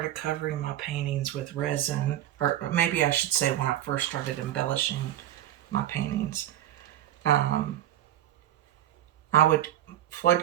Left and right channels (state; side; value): quieter; left; 12.4 dB